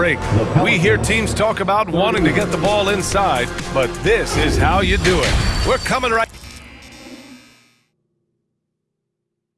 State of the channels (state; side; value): identical; both; correlation 1.00